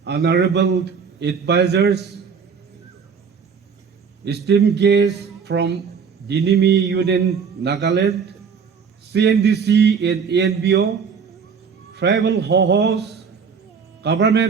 Honorable Advisors, esteemed guests from Dinimi Union Nagaland, CNDC and ANBO, tribal hosts,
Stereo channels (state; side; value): quieter; left; 6.2 dB